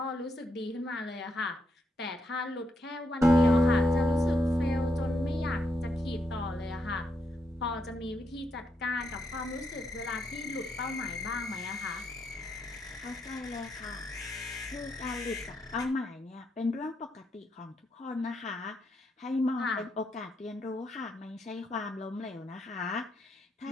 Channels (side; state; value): both; normal; correlation 0.79